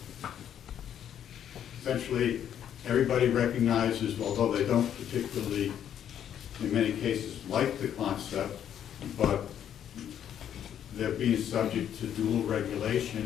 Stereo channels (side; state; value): right; quieter; 9.7 dB